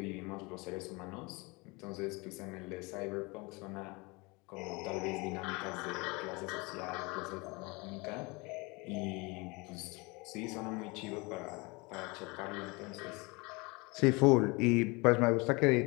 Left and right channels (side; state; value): right; quieter; 26.5 dB